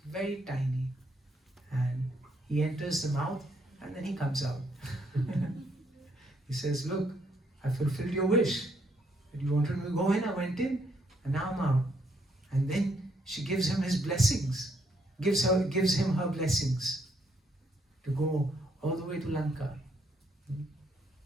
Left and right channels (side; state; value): both; normal; correlation 0.72